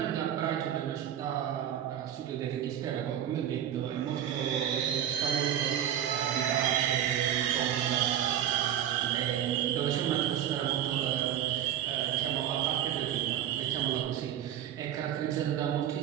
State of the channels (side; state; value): left; quieter; 10.5 dB